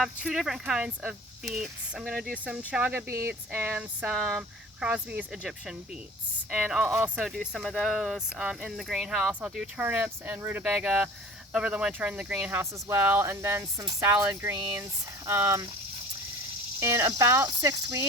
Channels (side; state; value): both; normal; correlation 0.43